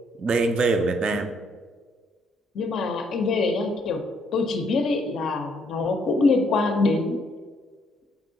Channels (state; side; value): normal; both; correlation 0.70